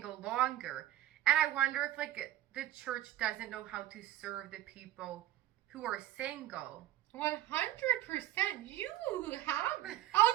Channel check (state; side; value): quieter; left; 13.8 dB